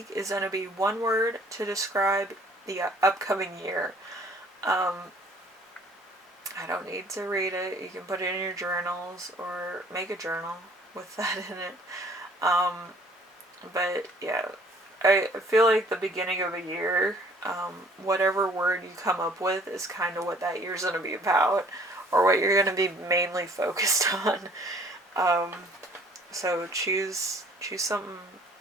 is going to be one word to describe the upcoming year. I don't need to read it. You can put it in your journals or make a journal with that in it. But yeah, I feel like the beginning of a year, whatever word you come up with is kind of what that year's going to be about, or what you're going to be mainly focused on. So choose something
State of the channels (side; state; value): both; normal; correlation 0.57